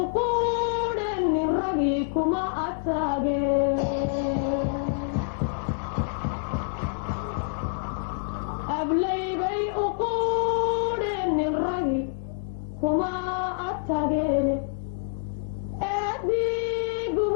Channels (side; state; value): right; silent; 60 dB below the other